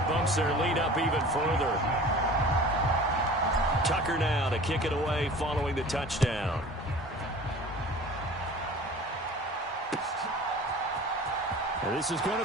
bumps their lead up even further. Tucker now to kick it away following the touchdown. And this is going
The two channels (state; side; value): normal; both; correlation 0.42